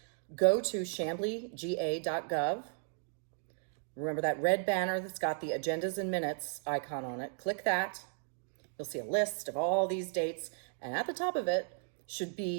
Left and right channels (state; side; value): silent; left; digital silence